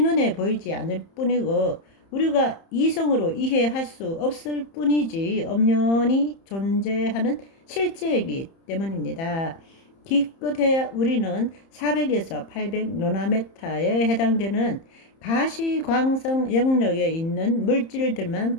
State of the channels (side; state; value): right; late; 30 ms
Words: 보이지 않을 뿐이고 우리가 이성으로 이해할 수 없을 뿐이지 엄연히 존재하는 실제이기 때문입니다. 기껏해야 우리는 400에서 800 노나메타에 해당되는 가시광성 영역에 있는 물질들만